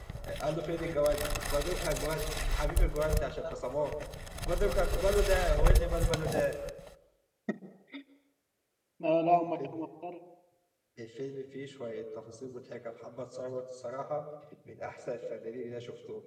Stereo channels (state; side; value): identical; both; correlation 1.00